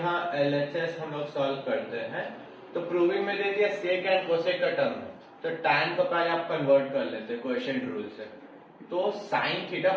LHS हम लोग सॉल्व करते हैं, तो प्रूविंग में दे दिया सेक एंड कोसेक का टर्म है, तो tan को पहले आप कन्वर्ट कर लेते हैं क्वोशिएंट रूल से। तो sine theta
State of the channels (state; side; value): identical; both; correlation 1.00